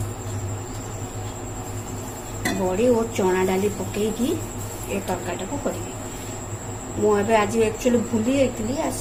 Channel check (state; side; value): identical; both; correlation 1.00